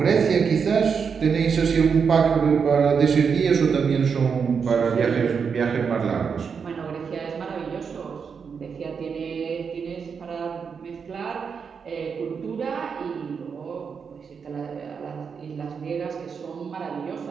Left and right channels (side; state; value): left; quieter; 6.2 dB